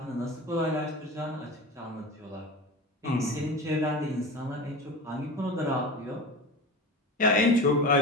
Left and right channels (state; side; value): normal; both; correlation 0.30